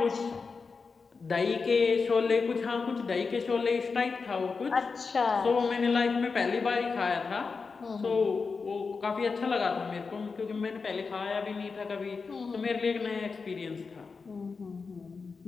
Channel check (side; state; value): right; quieter; 4.8 dB